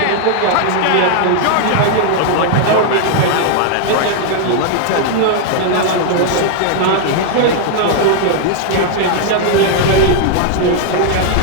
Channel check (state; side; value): different; both; correlation 0.00